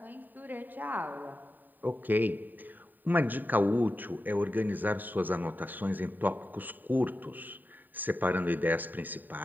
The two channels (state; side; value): late; left; 0.089 ms